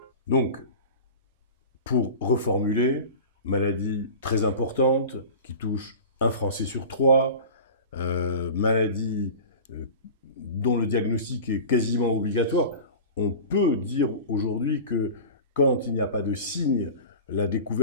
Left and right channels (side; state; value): both; inverted; correlation -0.35